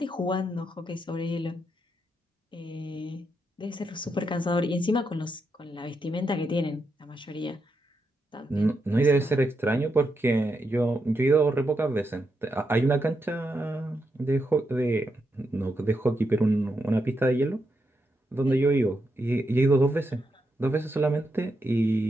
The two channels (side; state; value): both; normal; correlation 0.83